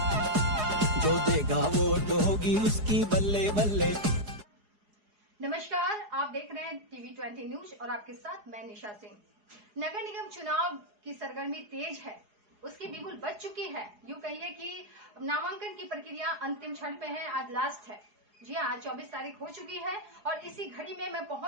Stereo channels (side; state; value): left; late; 4.8 ms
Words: जो देगा वोट होगी उसकी बल्ले बल्ले। नमस्कार, आप देख रहे हैं TV20 न्यूज और आपके साथ मैं निशा सिंह। नगर निगम चुनाव की सरगर्मी तेज है, उसकी बिगुल बज चुकी है। यूं कहिए कि नामांकन की प्रक्रिया अंतिम क्षण पे है, आज लास्ट है। जी हाँ, आज 24 तारीख हो चुकी है और इसी घड़ी में मैं